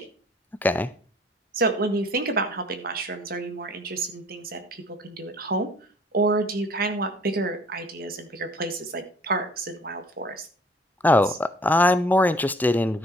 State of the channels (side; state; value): both; normal; correlation 0.54